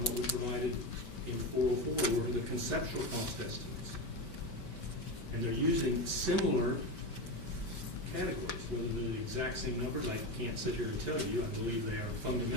we provided in 404 were the conceptual cost estimates. And they're using similar categories, whether they're the exact same numbers, I can't sit here and tell you. I believe they are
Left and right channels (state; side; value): late; right; 5.2 ms